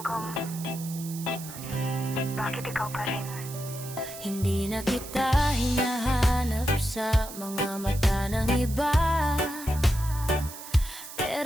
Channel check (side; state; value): right; noise; hiss, 13 dB below the sound